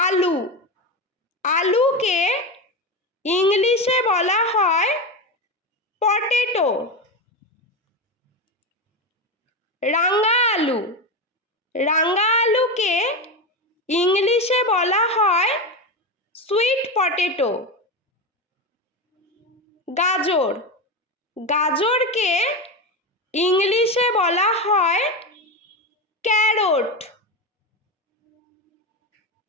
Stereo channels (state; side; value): normal; both; correlation 0.17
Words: আলুকে ইংলিশে বলা হয় পটেটো। রাঙা আলু। রাঙা আলুকে ইংলিশে বলা হয় সুইট পটেটো। গাজর। গাজরকে ইংলিশে বলা হয় ক্যারট।